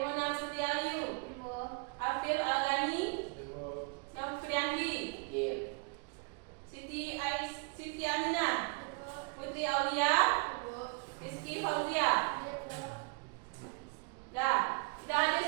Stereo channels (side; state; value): left; quieter; 33.8 dB